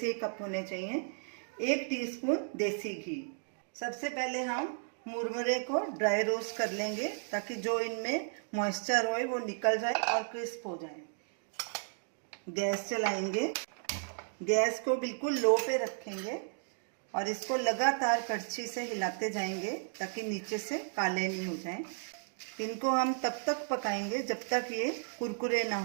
ही कप होने चाहिए। 1 टीस्पून देसी घी। सबसे पहले हम मुरमुरे को ड्राई रोस्ट कर लेंगे ताकि जो इनमें मॉइस्चर हो वो निकल जाए और क्रिस्प हो जाए। गैस चलाएंगे, गैस को बिल्कुल लो पे रखेंगे और इसको लगातार कड़छी से हिलाते जाएंगे ताकि नीचे से काले नहीं हो जाएं। इनको हम तब तक पकाएंगे जब तक ये कुरकुरे ना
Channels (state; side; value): silent; left; digital silence